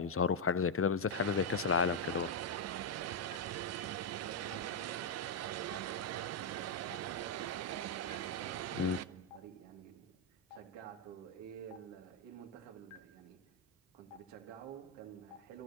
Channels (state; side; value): normal; both; correlation -0.01